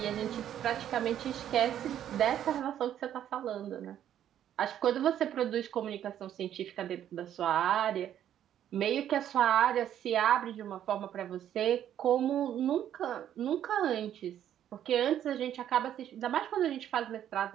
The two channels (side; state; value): left; quieter; 10.6 dB